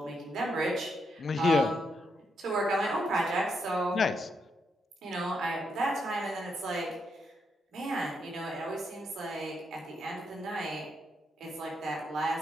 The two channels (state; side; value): normal; both; correlation 0.80